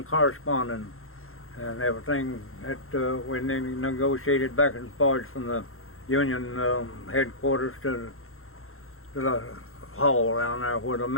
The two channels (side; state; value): right; late; 0.62 ms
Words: correspondence and everything that we negotiated back and forth from the union headquarters to the hall down there where the